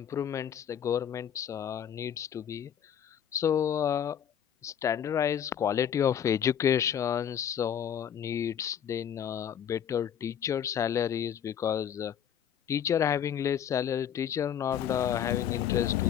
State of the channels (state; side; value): quieter; right; 9.1 dB